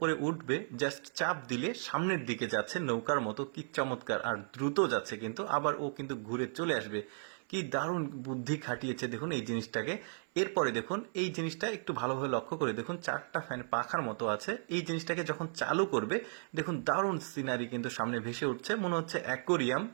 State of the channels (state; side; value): silent; left; 54 dB below the other